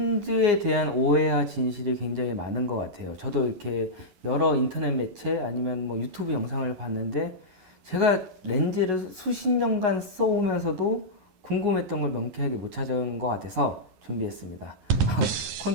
대한 오해와 진실이 굉장히 많은 것 같아요. 저도 이렇게 여러 인터넷 매체 아니면 뭐 유튜브 영상을 봤는데 제가 렌즈를 수십 년간 써오면서도 궁금했던 걸 명쾌하게 못 찾은 것 같아서 준비했습니다.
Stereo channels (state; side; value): late; left; 11 ms